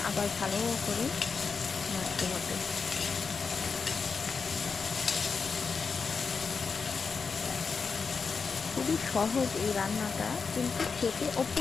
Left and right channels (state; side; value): quieter; right; 5.2 dB